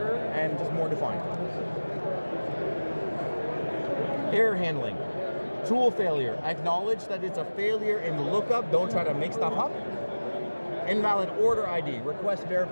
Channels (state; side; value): inverted; both; correlation -1.00